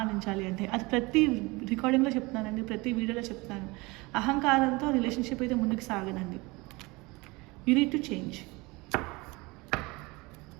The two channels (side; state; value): left; quieter; 24.2 dB